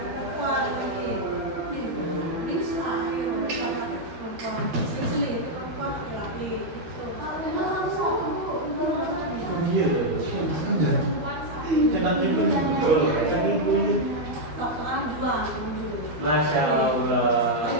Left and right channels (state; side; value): late; left; 12 ms